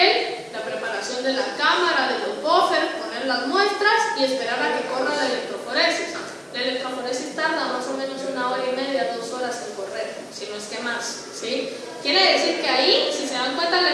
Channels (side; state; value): both; identical; correlation 1.00